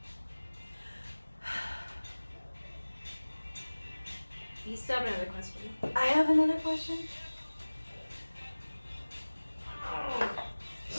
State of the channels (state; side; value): inverted; both; correlation -1.00